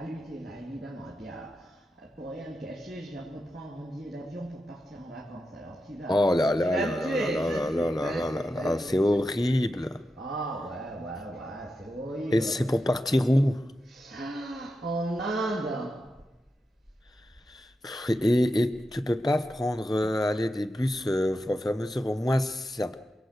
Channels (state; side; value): normal; both; correlation 0.89